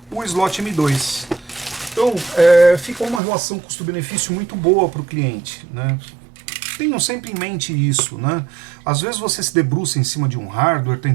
o slot M2. Então, fica uma relação custo-benefício muito boa para o cliente, né? Tenham sempre em mente isso, né? Às vezes você se debruça em cima de um hardware,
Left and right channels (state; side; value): drops out; left; at 3.2 s